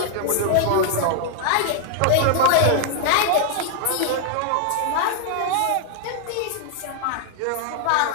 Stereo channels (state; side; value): different; both; correlation 0.00